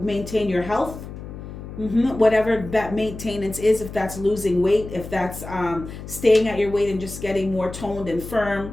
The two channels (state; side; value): noise; left; hum, 11 dB below the sound